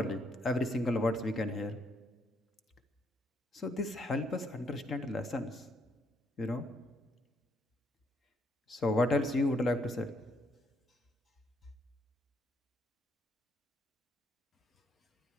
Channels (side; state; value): both; normal; correlation 0.72